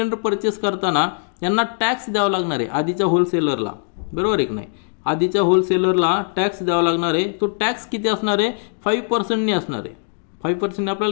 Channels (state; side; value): silent; right; digital silence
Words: परचेस करताना त्यांना टॅक्स द्यावा लागणार आहे आधीच्या होलसेलरला, बरोबर आहे की नाही. आधीच्या होलसेलरला टॅक्स द्यावा लागणार आहे. तो टॅक्स किती असणार आहे, 5% असणार आहे. 5%